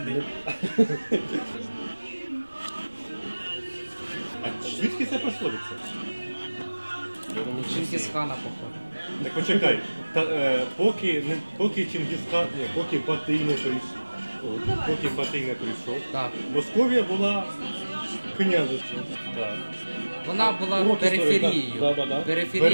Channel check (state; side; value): inverted; both; correlation -1.00